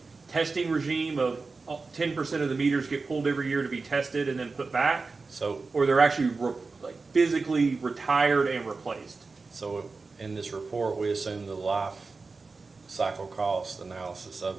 testing regime of 10% of the meters get pulled every year to be tested and then put back? So Or they're actually physically retired and replaced? So in this report, we assume the life cycle cost analysis of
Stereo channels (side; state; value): left; quieter; 4.1 dB